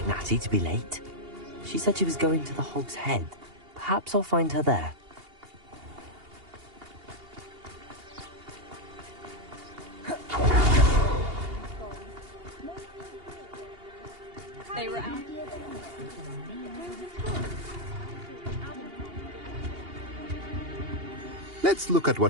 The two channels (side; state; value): left; late; 2.8 ms